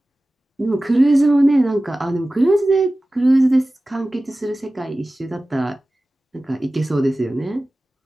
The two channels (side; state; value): both; normal; correlation 0.96